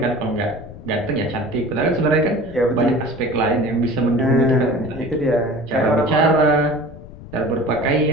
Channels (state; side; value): noise; left; rumble, 17 dB below the sound